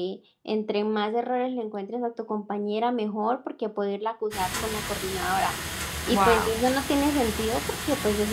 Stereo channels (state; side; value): identical; both; correlation 1.00